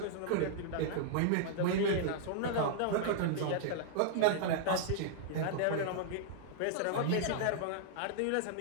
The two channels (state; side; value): different; both; correlation -0.01